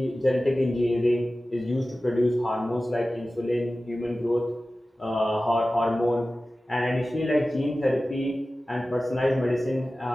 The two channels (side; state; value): both; normal; correlation 0.96